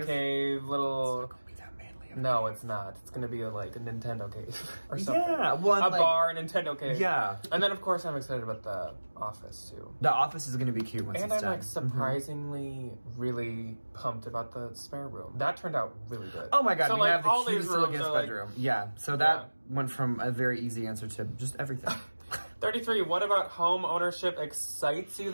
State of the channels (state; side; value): inverted; both; correlation -1.00